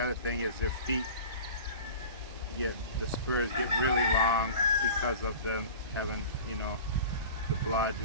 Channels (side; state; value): both; inverted; correlation -0.37